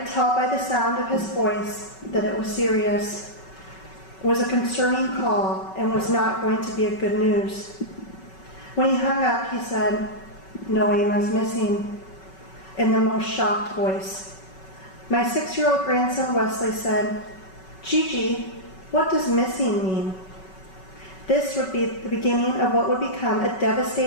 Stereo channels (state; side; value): late; right; 5.3 ms